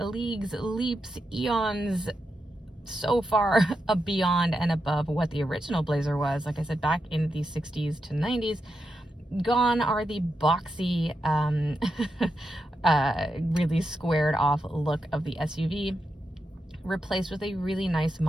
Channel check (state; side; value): normal; both; correlation 0.87